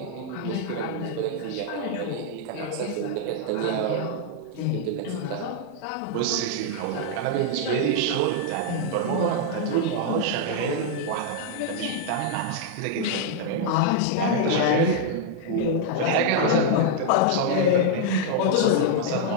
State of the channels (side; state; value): both; different; correlation -0.01